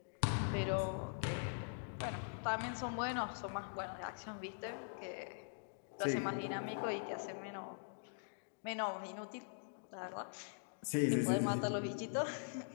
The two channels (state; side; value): silent; right; digital silence